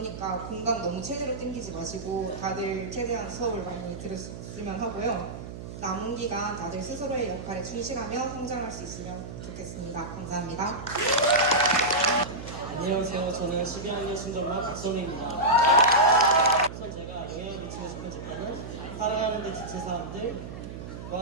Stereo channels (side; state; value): right; noise; hum, 10 dB below the sound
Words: 공강 너무 최대로 땡기지 마시고 다들 최대한 수업을 많이 들었으면 하고요. 남은 기간 다들 스스로의 역할에 충실하며 성장할 수 있으면 좋겠습니다. 감사합니다. 안녕하세요. 저는 12학년 신정반 박선우입니다. 우선 제가 영향을 미치고 싶은 집단은 살아가는 데 지친